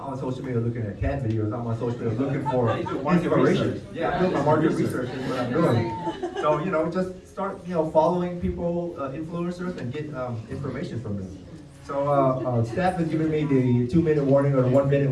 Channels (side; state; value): both; identical; correlation 1.00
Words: on social media looking at cat videos. I'm on social media looking for inspiration. Yeah, I'm doing my market research is what I'm doing. So just start following people, influencers, and get information from them. So staff has given me the 2-minute warning or the 1-minute